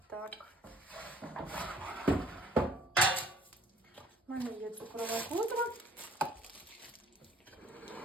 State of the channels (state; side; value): normal; both; correlation 0.57